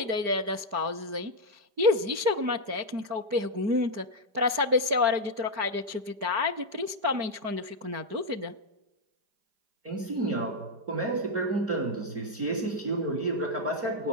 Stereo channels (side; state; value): left; late; 4.9 ms